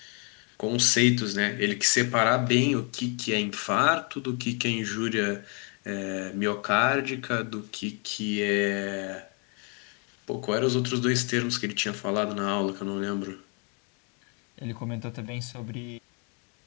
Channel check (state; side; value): quieter; right; 36.2 dB